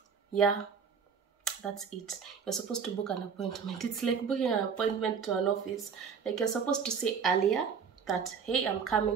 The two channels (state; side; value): quieter; left; 6.3 dB